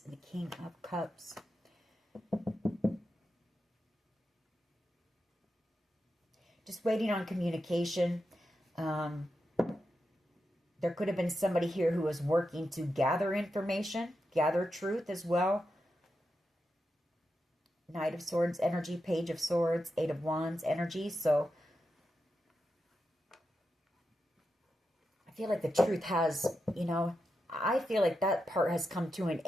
and the King of Cups. Just waiting on communication. There could have been somebody here who was working to gather information, gather truth as well. Knight of Swords energy, Page of Swords, Eight of Wands energy. So I feel like the truth has, I feel like that part has come to an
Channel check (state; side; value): normal; both; correlation 0.88